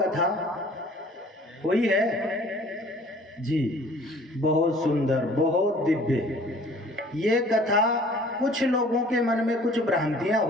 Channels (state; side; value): normal; both; correlation 0.52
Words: हुई है जी। बहुत सुंदर, बहुत दिव्य। ये कथा कुछ लोगों के मन में कुछ भ्रांतियां